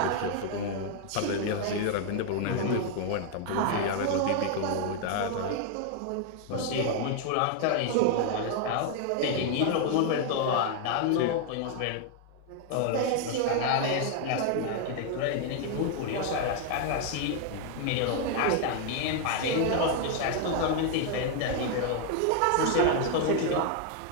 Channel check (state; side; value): different; both; correlation 0.00